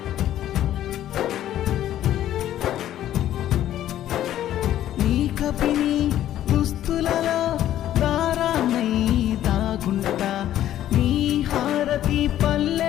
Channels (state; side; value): quieter; right; 12.3 dB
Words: నీ కపిని దుస్తులలో దారానై దాగుంటా నీ హారతి